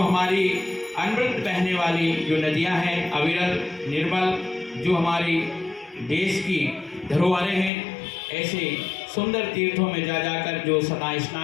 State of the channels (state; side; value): drops out; right; at 7.7 s